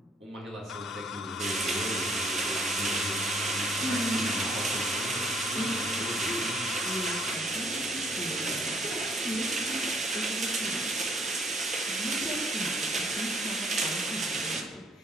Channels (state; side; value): normal; both; correlation 0.64